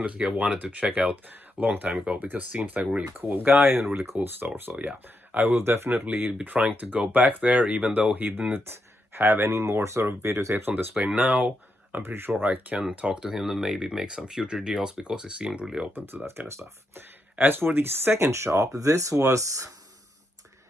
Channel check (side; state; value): both; normal; correlation 0.82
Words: have wanted to check out a long time ago, because seems like a really cool guy and a really cool store. So yeah, I will definitely be trying to go back there, even though he didn't have any more sort of videotapes on display now. I'm pretty sure I can talk to him and maybe make some future deals, because he seemed really open to that kind of stuff. As for the second shop, this was